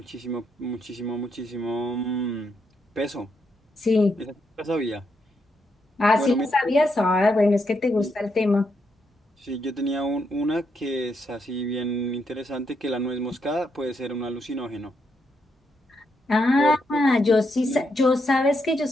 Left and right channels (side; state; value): both; normal; correlation 0.80